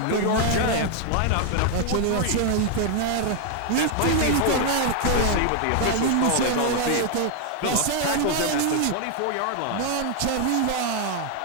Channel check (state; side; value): different; both; correlation 0.00